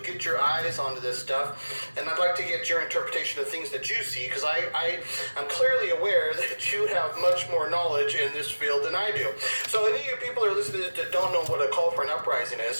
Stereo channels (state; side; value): inverted; both; correlation -1.00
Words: get your eyes onto this stuff, and I'd like to get your interpretation of things that you see, because I'm clearly aware that you have much more knowledge in this field than I do. So any of you people that are listening to this that don't know what a call for an uprising